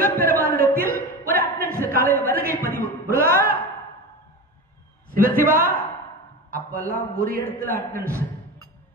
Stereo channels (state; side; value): normal; both; correlation 0.26